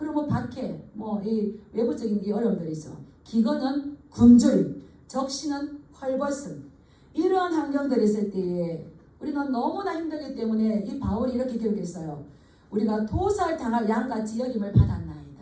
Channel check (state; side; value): identical; both; correlation 1.00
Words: 박해, 이 외부적인 이 어려움들이 있어. 기근은 굶주림, 적신은 헐벗음. 이러한 환경들이 있을 때에 우리는 너무나 힘들기 때문에 이 바울이 이렇게 기록했어요. 우리가 도살당할 양같이 여김을